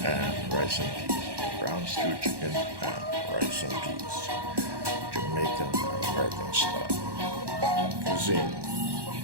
and rice and peas. Brown stewed chicken and rice and peas. Jamaican and American style cuisine.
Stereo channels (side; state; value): left; late; 1.1 ms